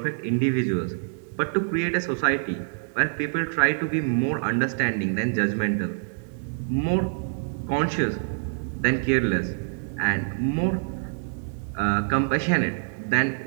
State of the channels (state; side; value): silent; left; digital silence